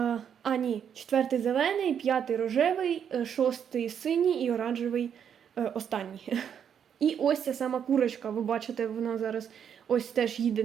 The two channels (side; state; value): left; quieter; 8.2 dB